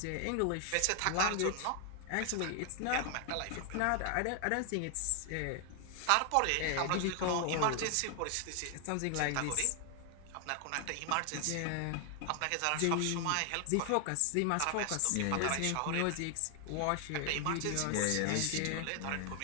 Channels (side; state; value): both; different; correlation 0.00